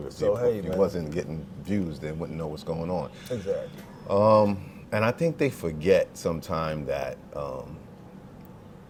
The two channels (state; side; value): identical; both; correlation 1.00